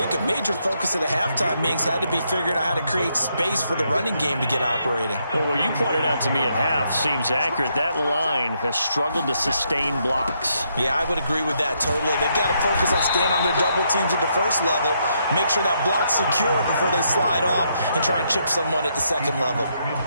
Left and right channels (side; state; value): both; inverted; correlation -0.76